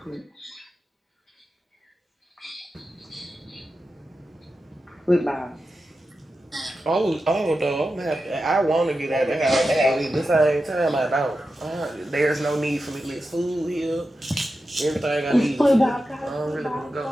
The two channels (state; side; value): normal; both; correlation 0.91